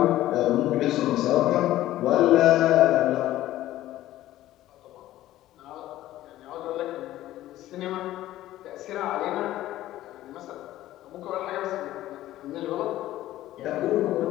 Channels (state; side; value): quieter; right; 14.6 dB